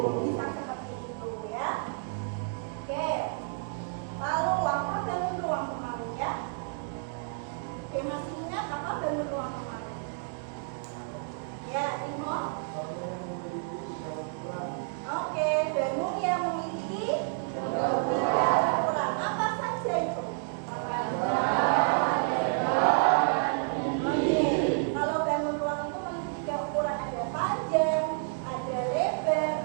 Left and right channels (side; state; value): left; silent; digital silence